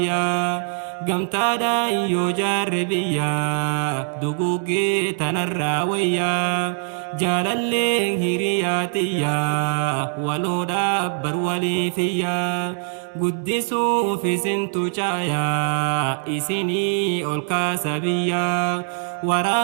قمتا دا يجار بيا دقوقي تنرى ويا جالالي هيرياتيا ولو دابر ولي فيا قدسوا في سنتو جايا إسيني أولكا سبيا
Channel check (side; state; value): left; silent; digital silence